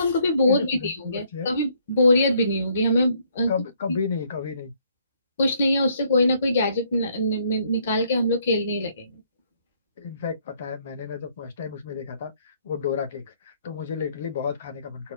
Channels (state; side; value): inverted; both; correlation -0.68